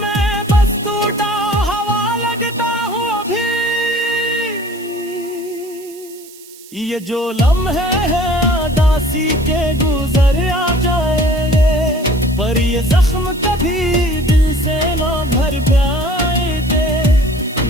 बस टूटा हवा लगता हूँ अभी। ये जो लम्हे हैं उदासी के गुजर आ जाएंगे, पर ये जख्म कभी दिल से ना भर पाएंगे।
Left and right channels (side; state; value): right; noise; hiss, 21 dB below the sound